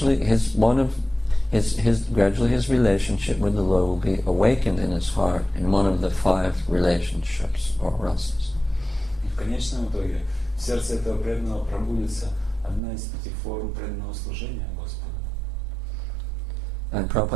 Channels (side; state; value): left; drops out; at 12.8 s